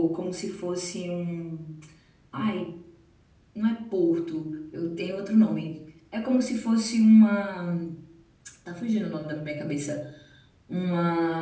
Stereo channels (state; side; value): identical; both; correlation 1.00